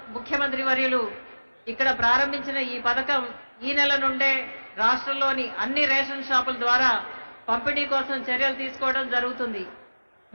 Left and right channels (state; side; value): inverted; both; correlation -1.00